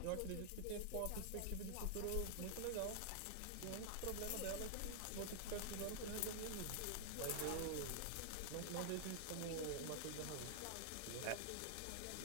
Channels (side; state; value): both; different; correlation -0.01